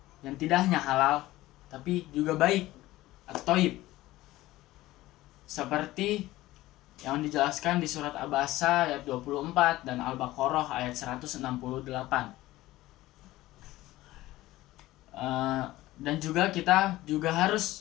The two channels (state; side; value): quieter; right; 17.0 dB